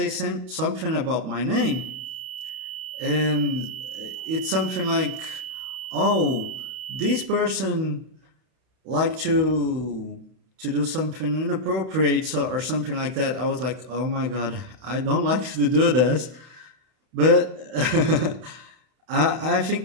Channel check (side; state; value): left; late; 32 ms